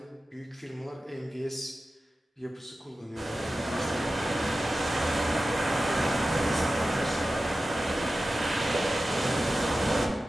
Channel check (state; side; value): normal; both; correlation 0.94